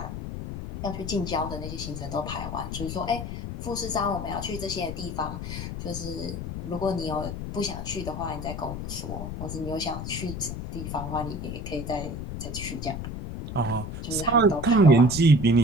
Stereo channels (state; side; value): noise; left; rumble, 6 dB below the sound